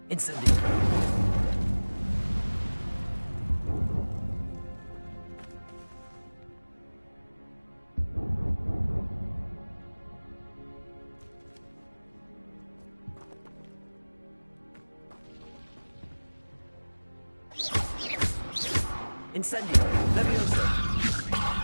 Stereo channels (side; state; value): both; inverted; correlation -1.00